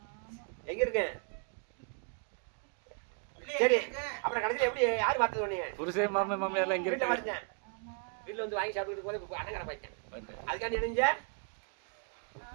எங்க இருக்கேன்? சரி, அப்புறம் கடைசியில் எப்படி யார் பார்த்தது உடனே? புருஷே மாமியார்லாம் எங்க வீட்டில் இருக்காங்க? பார்த்தேன். வீட்டில் வந்து வாங்கி சாப்பிட்டு போது அண்ணன் கடை பார்த்தேன். அதுக்காண்டி நினைஞ்ச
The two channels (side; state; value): left; quieter; 38.0 dB